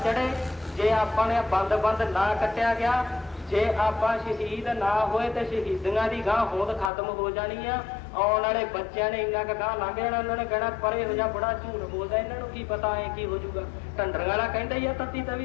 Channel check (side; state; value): right; drops out; at 6.9 s